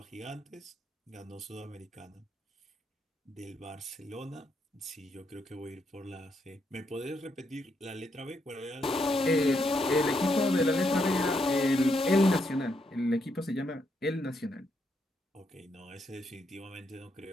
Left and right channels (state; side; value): normal; both; correlation 0.78